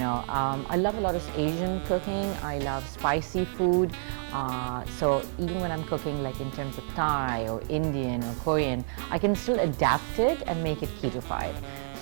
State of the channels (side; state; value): left; silent; digital silence